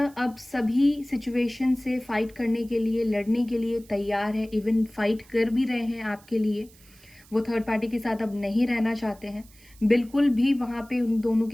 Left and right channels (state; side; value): noise; right; hiss, 26 dB below the sound